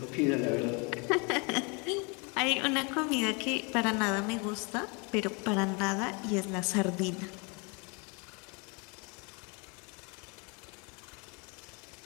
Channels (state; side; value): quieter; right; 31.9 dB